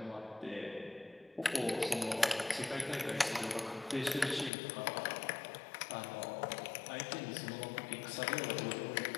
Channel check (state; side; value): drops out; right; at 4.5 s